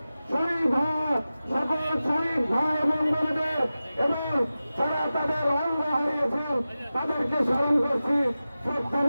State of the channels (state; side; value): inverted; both; correlation -0.95